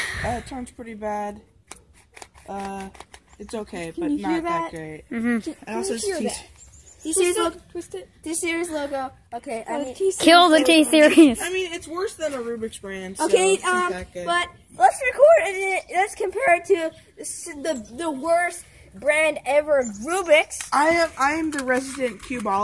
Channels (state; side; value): identical; both; correlation 1.00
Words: It turns pretty bad. It's okay, but you hear not that great. Mm-hmm. And also, you hear it's T-Series logo. Twist it. T-Series logo. Okay, I mean, Kill the T-Series. I mean, it's worse than a Rubik's brand. So okay, it's not that good. but let's record it. Let's compare it to the worst brand ever, Rubik's. I am the resident